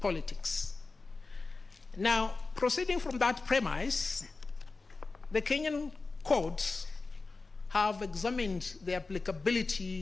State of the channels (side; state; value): right; quieter; 3.8 dB